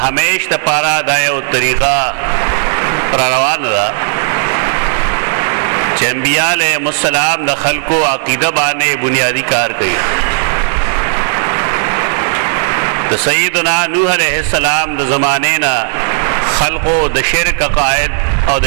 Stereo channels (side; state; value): left; silent; digital silence